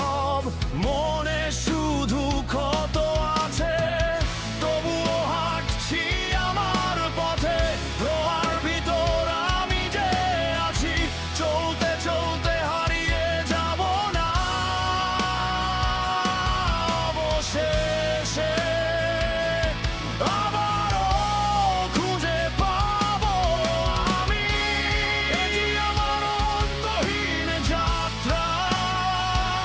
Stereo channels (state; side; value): identical; both; correlation 1.00